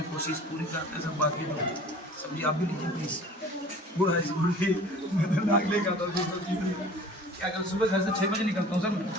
कोशिश पूरी करते हैं सब। बाकी लोग सब्जी आप भी लीजिए प्लीज। गुड़ है गुड़ की मैं तो नाक लेगा था क्या कर सुबह घर से 6 बजे निकलता हूँ सर।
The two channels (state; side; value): normal; both; correlation 0.45